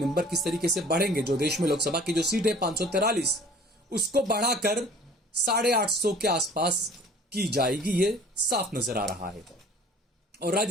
किस तरीके से बढ़ेंगे। जो देश में लोकसभा की जो सीट है 543, उसको बढ़ाकर 850 के आसपास की जाएगी, ये साफ नजर आ रहा है। और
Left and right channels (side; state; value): both; normal; correlation 0.49